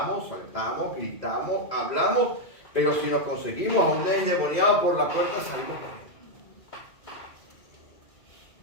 saltamos, gritamos, hablamos, pero si nos conseguimos a un endemoniado por la puerta, salimos corriendo.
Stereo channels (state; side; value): late; right; 2.0 ms